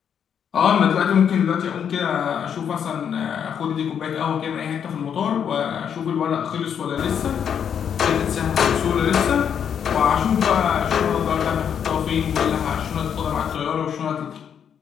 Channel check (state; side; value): quieter; right; 8.1 dB